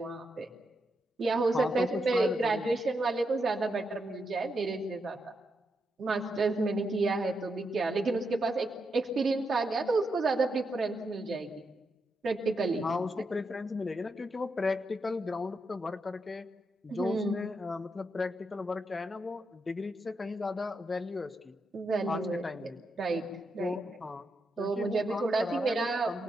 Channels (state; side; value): normal; both; correlation 0.83